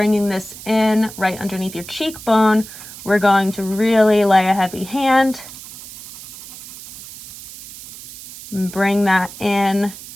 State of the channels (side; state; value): right; noise; hiss, 15 dB below the sound